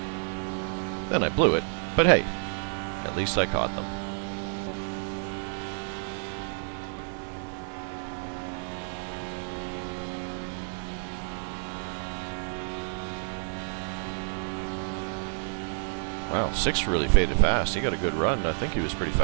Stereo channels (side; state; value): left; silent; 58 dB below the other